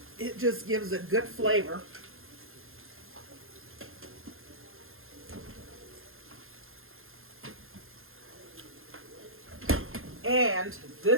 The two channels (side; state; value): left; late; 0.60 ms